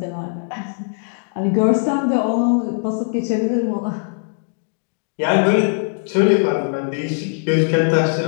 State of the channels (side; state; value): right; silent; digital silence